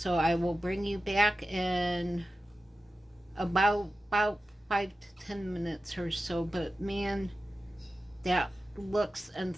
I will bring you back in about 5 to 10 minutes or so. But man, that looks and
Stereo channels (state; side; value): normal; both; correlation 0.93